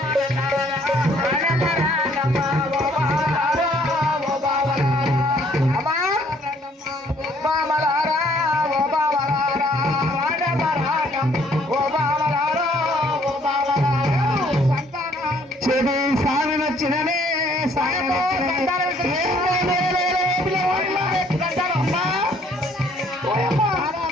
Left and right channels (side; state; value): both; normal; correlation 0.62